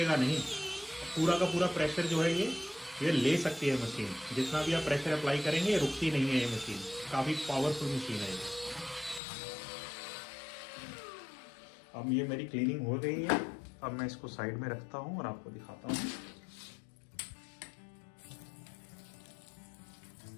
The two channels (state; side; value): drops out; right; at 9.2 s